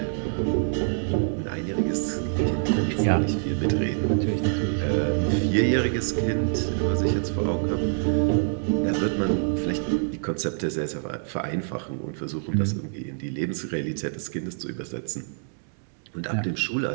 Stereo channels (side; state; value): left; silent; digital silence